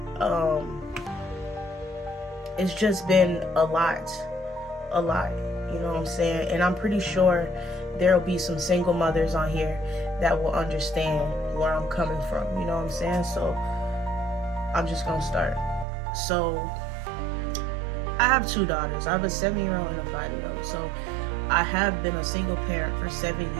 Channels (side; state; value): left; drops out; at 15.9 s